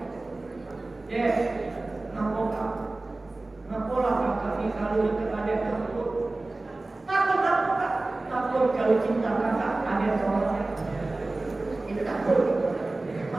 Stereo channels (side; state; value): left; quieter; 3.0 dB